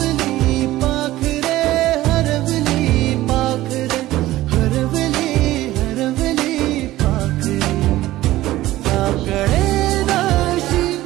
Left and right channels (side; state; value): left; quieter; 16.1 dB